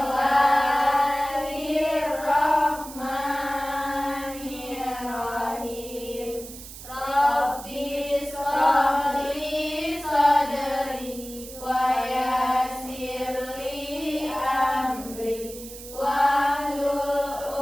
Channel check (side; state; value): right; noise; hiss, 14 dB below the sound